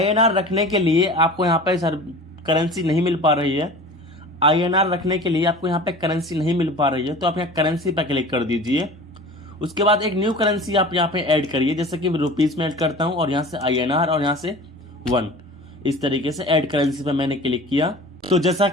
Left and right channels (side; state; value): both; normal; correlation 0.39